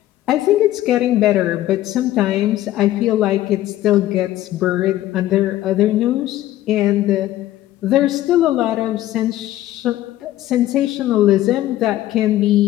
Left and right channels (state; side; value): quieter; right; 14.4 dB